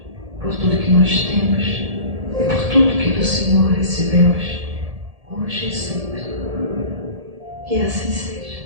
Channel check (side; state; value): left; late; 1.7 ms